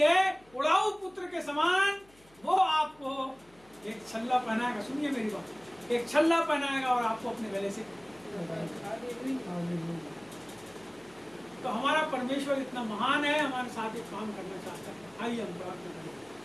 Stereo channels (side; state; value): left; noise; hum, 28 dB below the sound